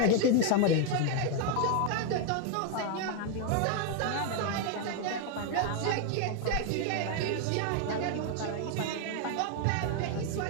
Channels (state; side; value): different; both; correlation 0.00